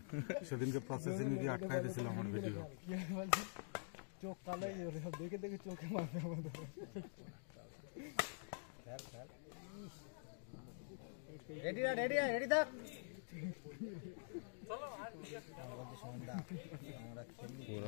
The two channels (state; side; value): silent; right; digital silence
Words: সেদিনকে প্রসেসিং গিয়ে আটকাই দিয়েছিল আমার ভিডিও। চোখ কালাই দেখে দেখে চোখে মারবে আমাদের। রেডি থাক।